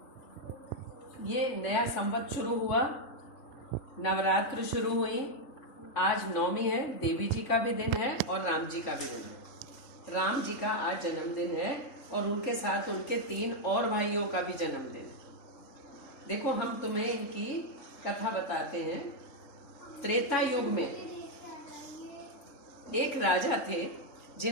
ये नया संवत शुरू हुआ, नवरात्र शुरू हुई। आज नवमी है, देवी जी का भी दिन है और राम जी का भी दिन है। राम जी का आज जन्मदिन है और उनके साथ उनके 3 और भाइयों का भी जन्मदिन है। देखो हम तुम्हें इनकी कथा बताते हैं। त्रेता युग में एक राजा थे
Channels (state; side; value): late; right; 3.5 ms